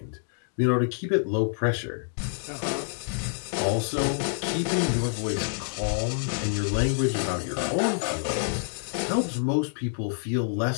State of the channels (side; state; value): right; silent; digital silence